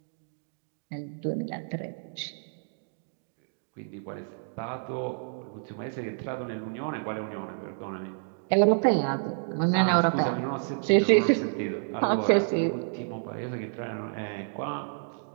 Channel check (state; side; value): silent; left; digital silence